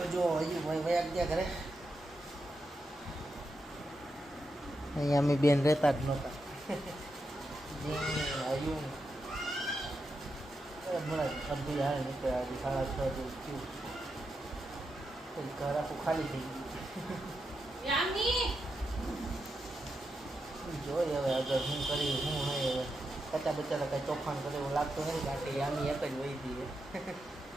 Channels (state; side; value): normal; both; correlation 0.86